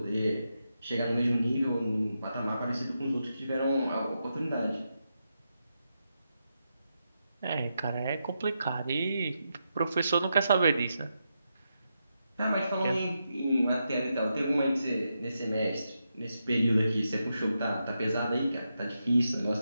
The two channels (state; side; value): inverted; both; correlation -0.85